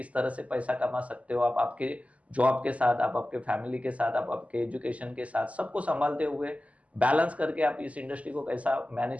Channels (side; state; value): left; late; 0.068 ms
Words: तरह से पैसा कमा सकते हो, आप आपके जॉब के साथ, आप आपके फैमिली के साथ, आप आपके एजुकेशन के साथ, सबको सँभालते हुए बैलेंस करके आप इस इंडस्ट्री को कैसा